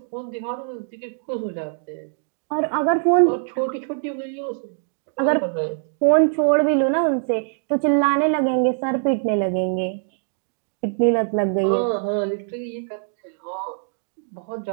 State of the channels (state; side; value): silent; left; digital silence